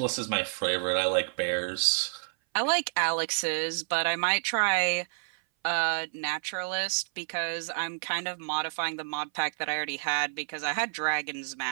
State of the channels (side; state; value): left; silent; 58 dB below the other